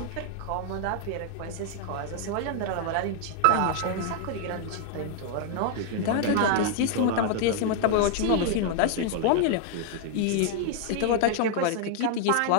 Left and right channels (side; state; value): both; different; correlation 0.00